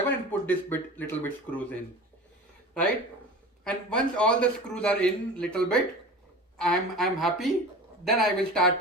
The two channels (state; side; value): normal; both; correlation 0.35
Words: and put this little bit screws in, right? And once all the screws are in little bit, I'm happy. Then I will start